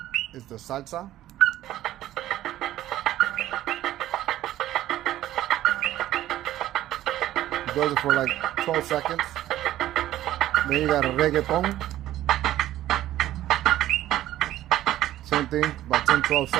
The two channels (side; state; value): left; quieter; 13.7 dB